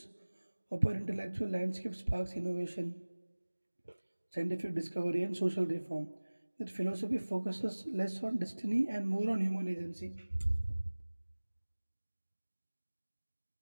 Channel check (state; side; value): inverted; both; correlation -1.00